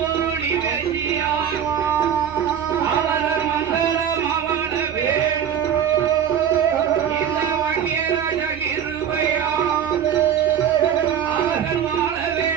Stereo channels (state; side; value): quieter; left; 8.8 dB